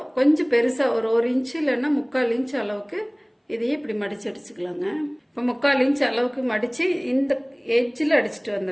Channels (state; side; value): identical; both; correlation 1.00